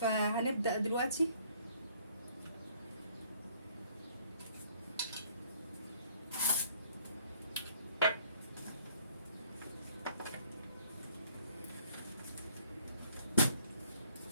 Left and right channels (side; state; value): both; inverted; correlation -0.61